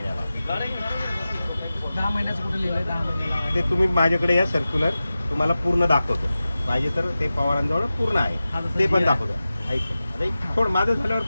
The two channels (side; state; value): both; inverted; correlation -0.95